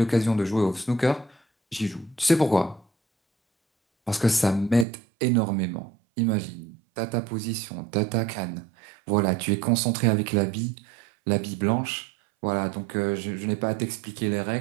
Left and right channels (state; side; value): drops out; left; at 4.9 s